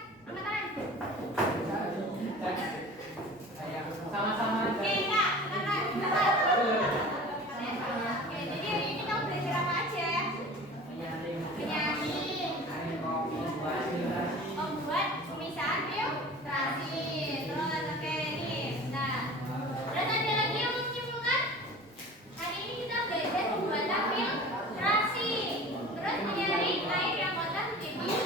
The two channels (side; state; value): both; normal; correlation 0.40